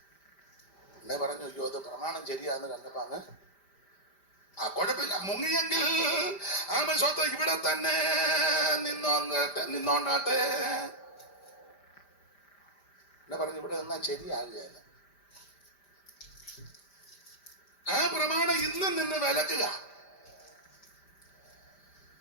എന്നെ പറഞ്ഞു അയ്യോ അത് പ്രമാണം ശരിയാന്ന് കണ്ടപ്പോ അങ്ങ് കുഴപ്പമില്ല, മുങ്ങിയെങ്കിൽ ആമ സ്വത്ത് ഇവിടെ തന്നെ നിന്നോണ്ടാട്ടെ എന്നെ പറഞ്ഞു. ഇവിടെ നിന്നാ ശരിയാകുകയല്ല. ആ പ്രമാണം ഇന്നും നിന്ന് വിലക്കുക.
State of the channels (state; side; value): late; right; 5.0 ms